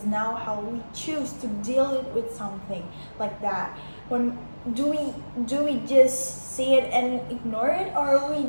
now how we choose to deal with something like that. When do we just see it and ignore it, or we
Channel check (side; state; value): both; inverted; correlation -1.00